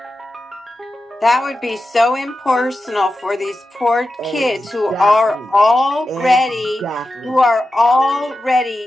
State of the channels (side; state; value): both; normal; correlation 0.91